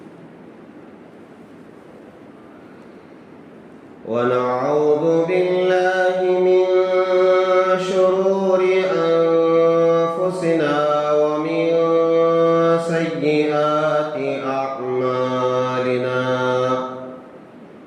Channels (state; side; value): identical; both; correlation 1.00